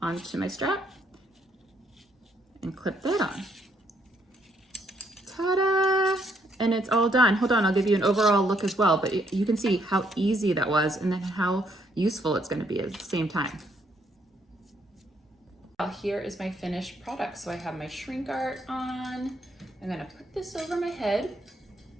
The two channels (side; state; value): both; normal; correlation 0.72